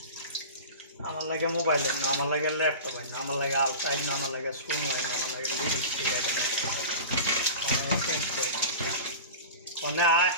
আমার লাগে মোবাইলের না, আমার লাগে ল্যাপটপের না, আমার লাগে আলটাইন না, আমার লাগে শুন হয় না, আমার লাগে লিপস্টিক আছে না, মনে আয়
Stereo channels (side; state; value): both; inverted; correlation -0.32